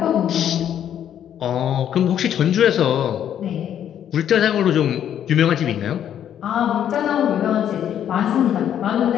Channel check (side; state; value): right; quieter; 9.9 dB